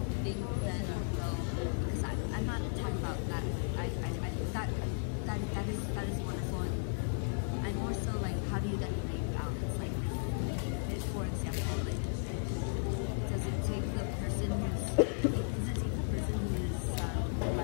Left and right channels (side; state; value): right; silent; digital silence